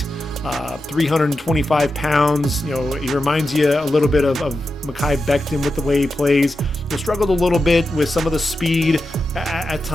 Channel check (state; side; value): normal; both; correlation 0.90